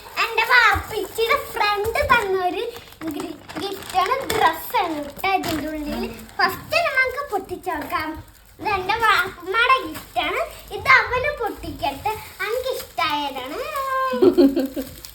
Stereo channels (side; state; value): both; identical; correlation 1.00